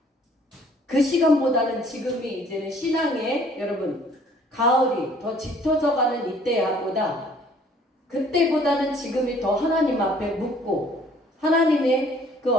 그 시간보다는 지금이 이제는 신앙의 여러분 가을이 더 짙어져 가는 이때보다 그때보다는 지금이 더 하나님 앞에 묻고 하나님의 그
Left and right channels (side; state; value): both; normal; correlation 0.57